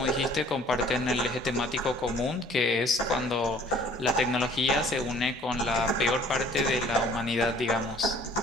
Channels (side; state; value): both; normal; correlation 0.55